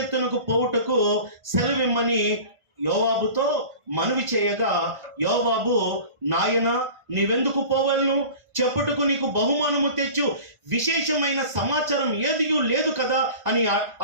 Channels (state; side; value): late; left; 1.5 ms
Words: పోవుటకు సెలవిమ్మని యోవాబుతో మనవి చేయగా, యోవాబు, నాయన నీవెందుకు పోవలను? చెప్పుటకు నీకు బహుమానము తెచ్చు విశేషమైన సమాచారం ఏదియూ లేదు కదా అని